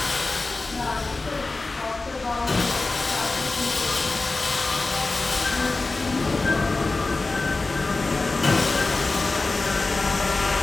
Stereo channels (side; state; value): right; quieter; 3.4 dB